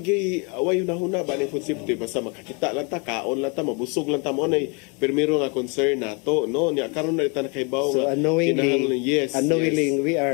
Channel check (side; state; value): right; quieter; 32.5 dB